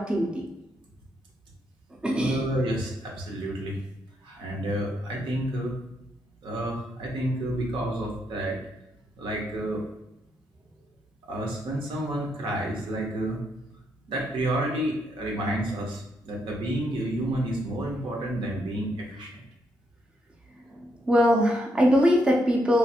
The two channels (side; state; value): both; normal; correlation 0.78